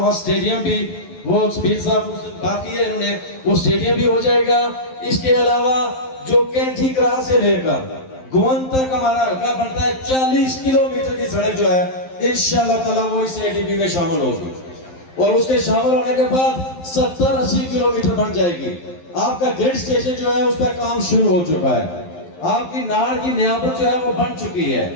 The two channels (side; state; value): right; late; 11 ms